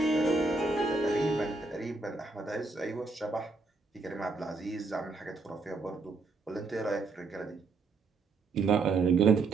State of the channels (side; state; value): left; quieter; 3.8 dB